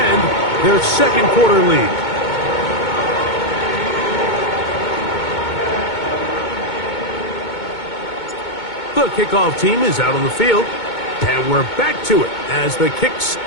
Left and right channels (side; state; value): right; late; 2.2 ms